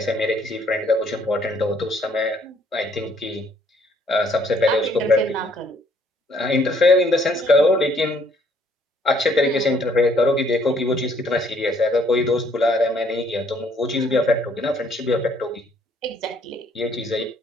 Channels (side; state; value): both; normal; correlation 0.64